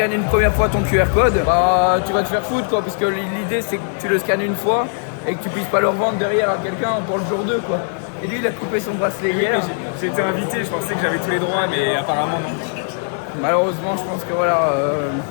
une première fois ton QR code, bah tu vas te faire foutre quoi, parce que l'idée c'est que tu le scannes une fois et que tu puisses pas le revendre derrière à quelqu'un pour le jour 2 quoi. Et lui il a coupé son bracelet hier. J'ai été invité, je pensais que j'avais tous les droits, mais apparemment non. Malheureusement je pense que voilà...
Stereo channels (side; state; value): right; silent; digital silence